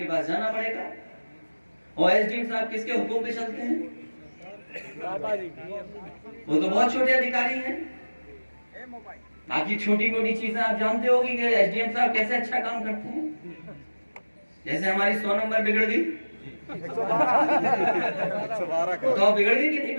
पास जाना पड़ेगा। और एसडीएम साहब किसके हुक्म पे चलते हैं? वो तो बहुत छोटे अधिकारी हैं। बाकी छोटी मोटी चीजें आप जानते होगी कि एसडीएम साहब कैसे अच्छा काम करते हैं। जैसे हमारी 100 नंबर बिगड़ गई तो बिगड़ गई कि नहीं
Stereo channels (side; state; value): both; inverted; correlation -1.00